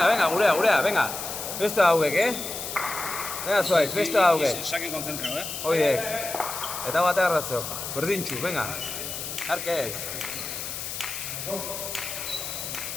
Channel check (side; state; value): left; noise; hiss, 6 dB below the sound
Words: Venga, gurea, venga. Beste hauek, Venga, zuaitz, beste hauek. Sakin konzentrao, Oidek. Eta bate arrazok. Berdintxu, venga. Arke ez.